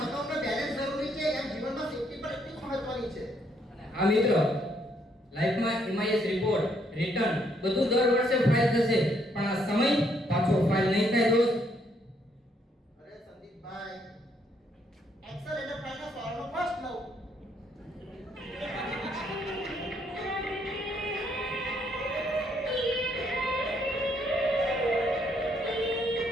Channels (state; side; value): normal; both; correlation 0.71